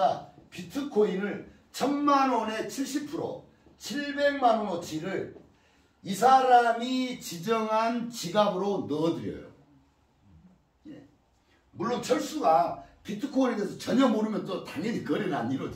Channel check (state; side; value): identical; both; correlation 1.00